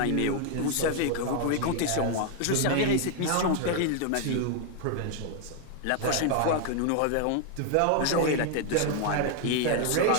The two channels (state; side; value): different; both; correlation 0.00